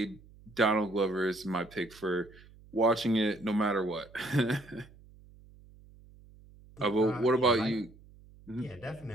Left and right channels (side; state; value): right; noise; hum, 23 dB below the sound